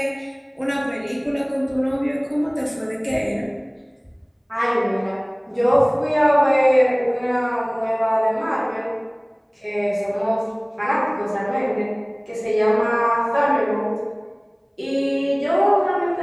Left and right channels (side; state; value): both; identical; correlation 1.00